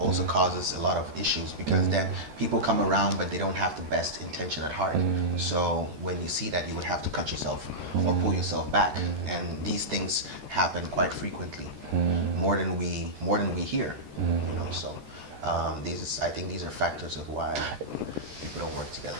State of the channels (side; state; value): left; late; 13 ms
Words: causes a lot of issues, because then people come around but they don't have the best intention at heart. So when you see that, you would have to cut yourself or pull yourself back, and these things happen quite frequently, more than we hear, you know. So I think these are factors of why people don't work together.